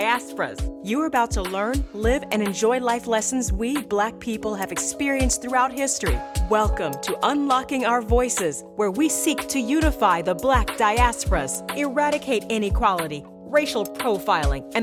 You're about to learn, live, and enjoy life lessons we Black people have experienced throughout history. Welcome to Unlocking Our Voices, where we seek to unify the Black diasporas, eradicate inequality, racial profiling,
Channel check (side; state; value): both; identical; correlation 1.00